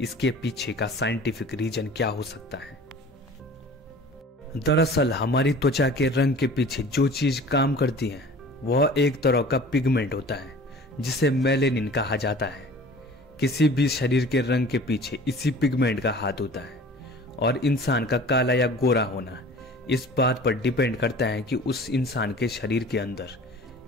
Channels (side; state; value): both; normal; correlation 0.44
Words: इसके पीछे का साइंटिफिक रीजन क्या हो सकता है। दरअसल हमारी त्वचा के रंग के पीछे जो चीज काम करती है वह एक तरह का पिगमेंट होता है जिसे मेलेनिन कहा जाता है। किसी भी शरीर के रंग के पीछे इसी पिगमेंट का हाथ होता है और इंसान का काला या गोरा होना इस बात पर डिपेंड करता है कि उस इंसान के शरीर के अंदर